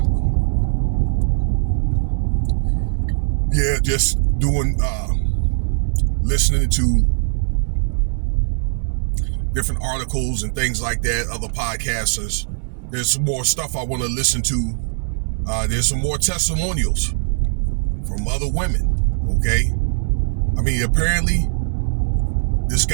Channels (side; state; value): left; silent; digital silence